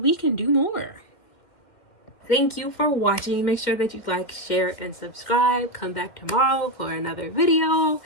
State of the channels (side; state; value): right; late; 2.1 ms